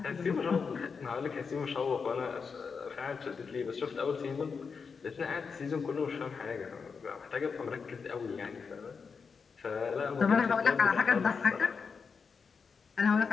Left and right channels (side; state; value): right; quieter; 5.5 dB